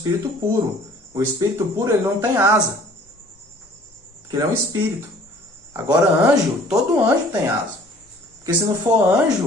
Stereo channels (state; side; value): normal; both; correlation 0.53